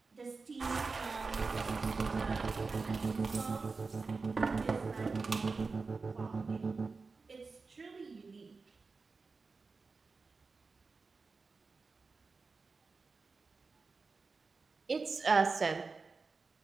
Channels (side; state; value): left; quieter; 4.3 dB